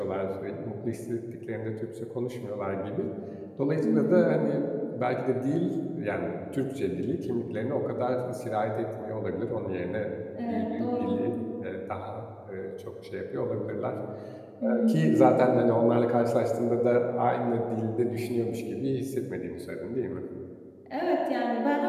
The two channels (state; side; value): identical; both; correlation 1.00